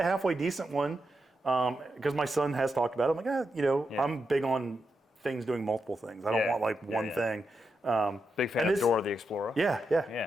halfway decent one. Because my son has talked about it. I'm like, I'm big on things doing multiple things. I don't want like one thing. Big fan of Dora the Explorer.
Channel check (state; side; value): normal; both; correlation 0.86